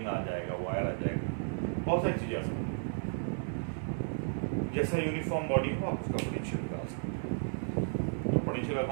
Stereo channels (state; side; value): silent; left; 55 dB below the other